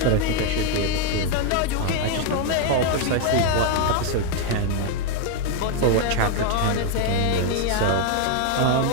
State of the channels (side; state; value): both; different; correlation 0.01